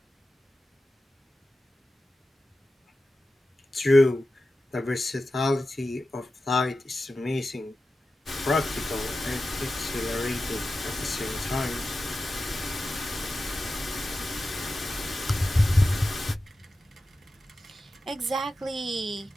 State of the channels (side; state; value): both; normal; correlation 0.93